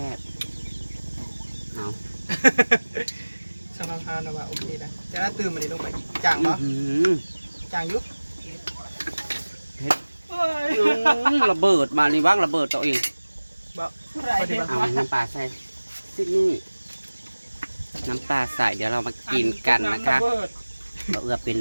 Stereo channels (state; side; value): inverted; both; correlation -1.00